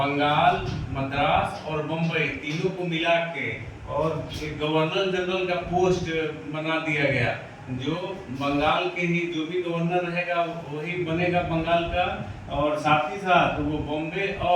मद्रास और बम्बई तीनों को मिला के और एक गवर्नर जनरल का पोस्ट बना दिया गया। जो बंगाल के ही जो भी गवर्नर रहेगा वही बनेगा बंगाल का, और साथ ही साथ वो बॉम्बे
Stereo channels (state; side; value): identical; both; correlation 1.00